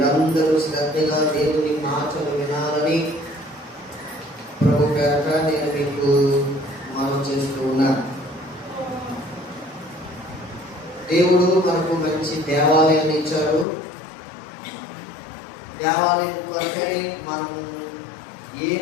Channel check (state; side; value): drops out; right; at 13.7 s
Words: శ్రద్ధగా దేవుని మాటలు వినాలని ప్రభు పేరట నేను మీకు మనం చేస్తూ ఉన్నాను. దేవుడు మనకు మంచి దేవాలయాన్ని ఇచ్చాడు. దేవాలయం కొరకై మనం